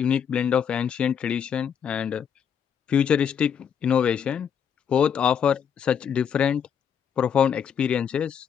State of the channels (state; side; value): quieter; right; 7.9 dB